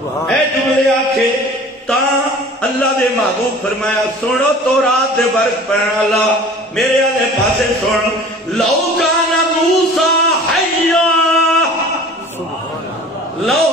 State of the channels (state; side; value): normal; both; correlation 0.44